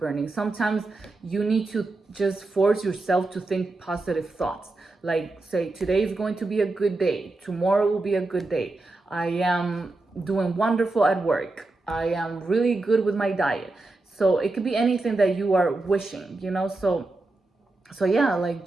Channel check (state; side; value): quieter; left; 3.1 dB